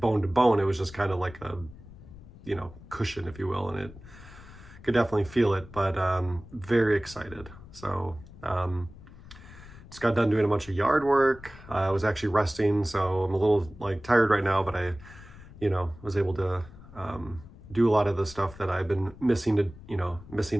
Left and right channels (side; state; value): left; noise; rumble, 18 dB below the sound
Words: to bone. It was just kind of like a, cushion, if you will. And it could definitely feel it, but very excited. So just got done doing a bunch of yard work. I was actually resting, so I'm a little like tired right now, but I, was able to do a lot of the stuff that I've been missing